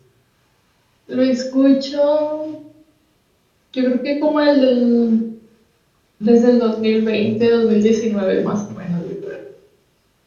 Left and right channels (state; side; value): identical; both; correlation 1.00